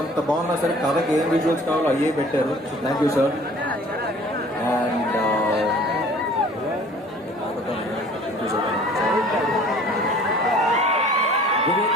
అంత బాగున్నా సరే కథకి ఏం విజువల్స్ కావాలో అయ్యే పెట్టారు. So thank you sir. And Vivek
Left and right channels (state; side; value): normal; both; correlation 0.50